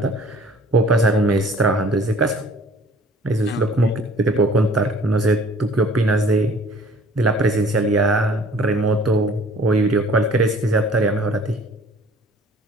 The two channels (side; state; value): both; normal; correlation 0.52